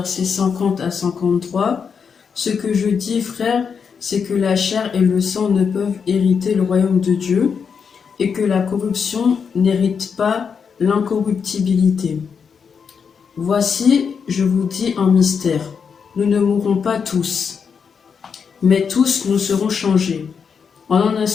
50 à 53. Ce que je dis, frères, c'est que la chair et le sang ne peuvent hériter le royaume de Dieu, et que la corruption n'hérite pas l'incorruptibilité. Voici, je vous dis un mystère. Nous ne mourrons pas tous, mais tous nous serons changés. En un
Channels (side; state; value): right; quieter; 6.3 dB